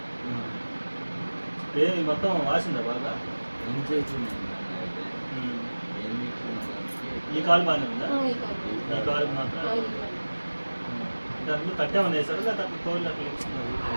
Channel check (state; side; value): inverted; both; correlation -1.00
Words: ఏ మొత్తం వాసిందా బాగా? ఏం చేసింది ఈ కాలు బాగానే ఉందా? ఈ కాలు మాత్రం దాంట్లో తట్టేమన్నా వేసారు లేదా అట్లా తోలు అట్లా